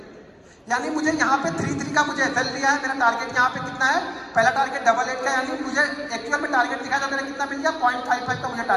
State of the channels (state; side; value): identical; both; correlation 1.00